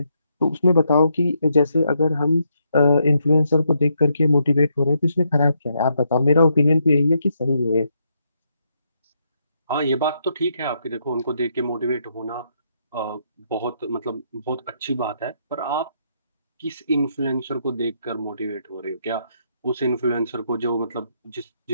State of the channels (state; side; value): inverted; both; correlation -0.77